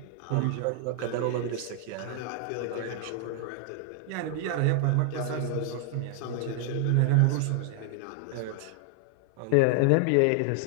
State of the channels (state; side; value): different; both; correlation 0.00